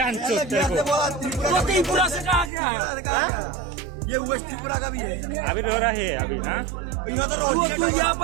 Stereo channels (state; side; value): drops out; left; at 2.5 s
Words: चोद तेरे को। तो त्रिपुरा से कहा गया है? ये वेस्ट त्रिपुरा का भी है। अभी रो रहा है अभी। हाँ तू